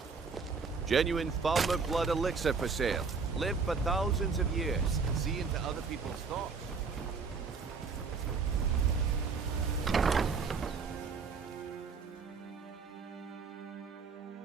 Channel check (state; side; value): quieter; left; 5.1 dB